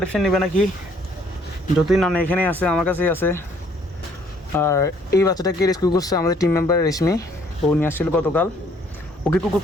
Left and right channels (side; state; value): both; normal; correlation 0.63